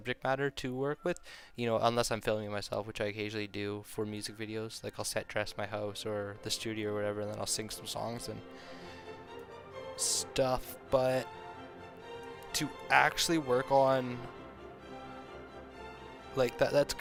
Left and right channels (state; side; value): identical; both; correlation 1.00